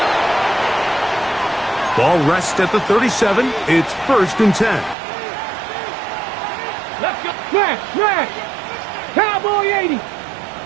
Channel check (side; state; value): left; drops out; at 5.0 s